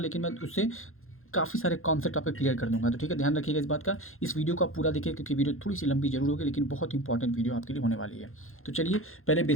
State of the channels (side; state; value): right; late; 0.61 ms